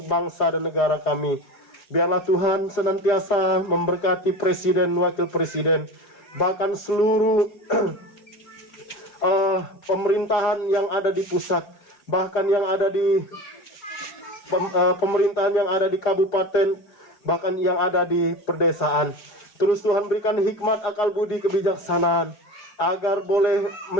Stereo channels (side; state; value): right; late; 4.8 ms